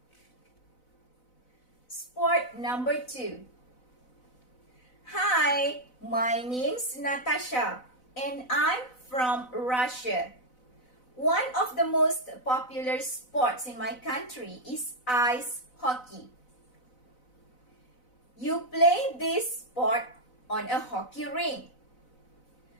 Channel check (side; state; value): right; late; 4.0 ms